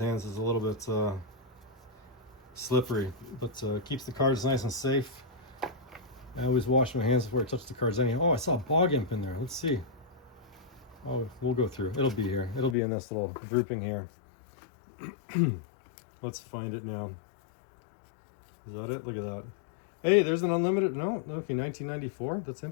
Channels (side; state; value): right; drops out; at 12.8 s